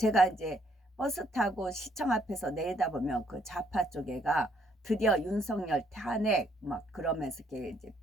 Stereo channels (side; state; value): both; normal; correlation 0.69